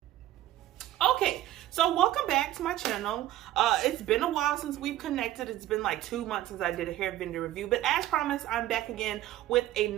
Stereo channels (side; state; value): left; quieter; 14.1 dB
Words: Okay, so welcome back to my channel. It's been a while since we've connected. It's been like 2 months since I did a hair vendor review, but as promised, I'm back again with